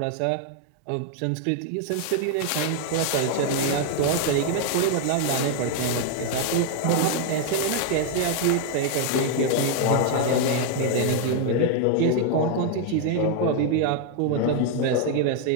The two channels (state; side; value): different; both; correlation 0.00